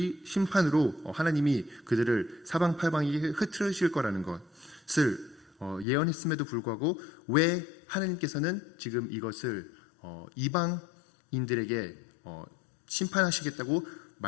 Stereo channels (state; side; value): drops out; right; at 5.9 s